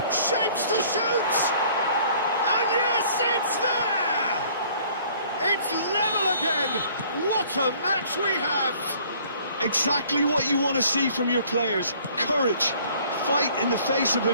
Shapes to shoot! And yes, it's there! It's level again! What a match we have! Exactly what you want to see from your players. Courage. Fight in the face of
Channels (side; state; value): both; inverted; correlation -0.56